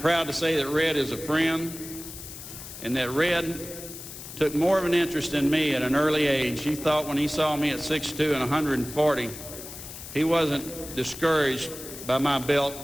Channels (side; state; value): left; noise; hiss, 12 dB below the sound